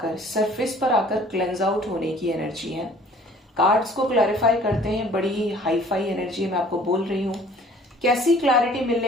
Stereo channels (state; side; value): normal; both; correlation 0.53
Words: सरफेस पर आकर क्लेंज आउट होने की एनर्जी है। कार्ड्स को क्लैरिफाई करते हैं, बड़ी ही हाई फाई एनर्जी मैं आपको बोल रही हूं। कैसी क्लैरिटी